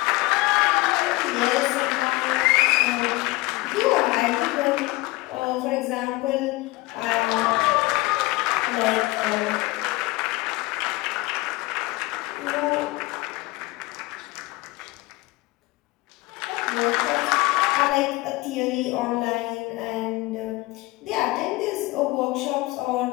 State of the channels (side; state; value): right; quieter; 21.4 dB